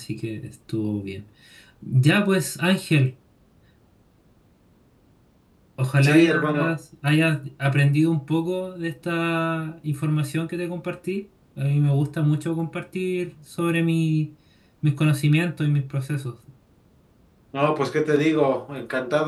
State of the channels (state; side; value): identical; both; correlation 1.00